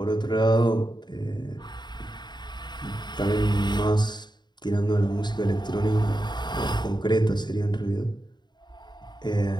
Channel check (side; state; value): right; late; 0.21 ms